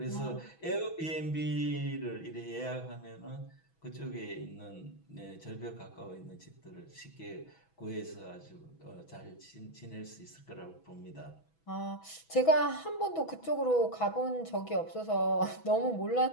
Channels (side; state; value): right; late; 6.1 ms